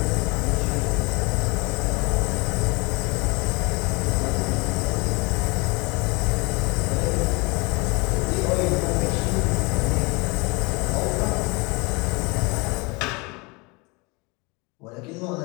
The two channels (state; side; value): quieter; right; 27.6 dB